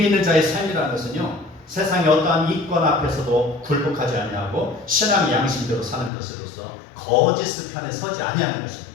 있는 자의 삶이라는 것은요, 세상의 어떠한 이권 앞에서도 굴복하지 아니하고 신앙의 양심대로 사는 것으로서 거짓 편에 서지 아니하는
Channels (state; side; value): drops out; right; at 6.1 s